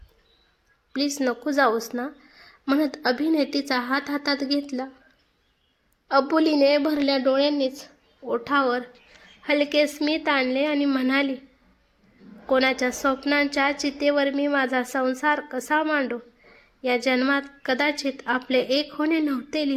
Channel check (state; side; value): identical; both; correlation 1.00